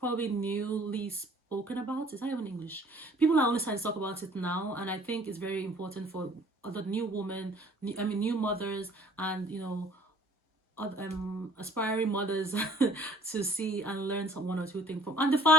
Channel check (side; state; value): both; normal; correlation 0.55